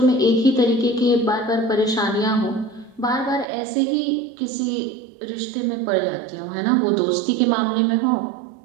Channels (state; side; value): drops out; left; at 3.5 s